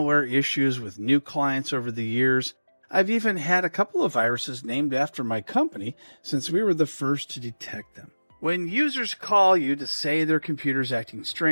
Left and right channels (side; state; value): both; inverted; correlation -1.00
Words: issues with new clients over the years. I've even had a couple of viruses named after my company since we were the first to detect them. When users call you to say their computer's acting